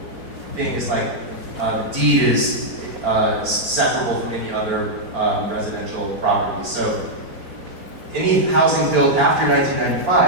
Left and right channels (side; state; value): left; late; 4.2 ms